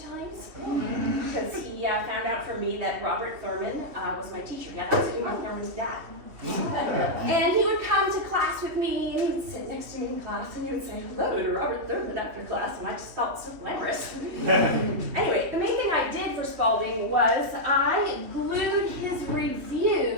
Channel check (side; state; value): left; late; 3.1 ms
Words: because he found out from me that Robert Thurman was my teacher. Yeah, that was Uma Thurman's dad. And he would come to class with me, and he would sit next to me in class, and he would say hello to Robert Thurman after class, and I just felt so glamorous. Anyway, the main thing I did for Spalding was I glued his